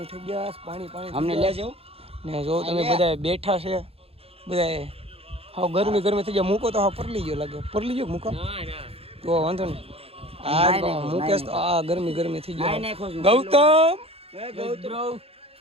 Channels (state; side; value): late; left; 0.28 ms